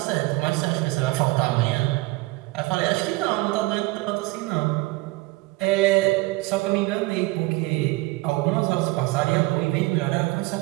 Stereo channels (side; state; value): left; quieter; 21.7 dB